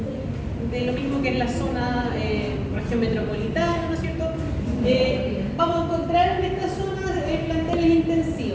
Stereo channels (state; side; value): identical; both; correlation 1.00